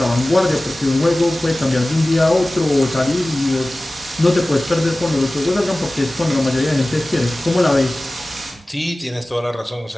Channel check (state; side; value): normal; both; correlation 0.97